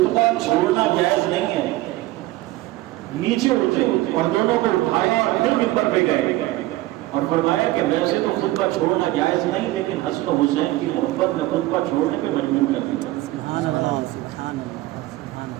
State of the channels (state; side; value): quieter; left; 17.7 dB